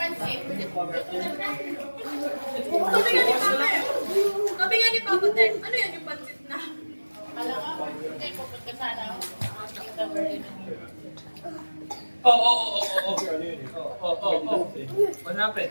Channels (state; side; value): inverted; both; correlation -1.00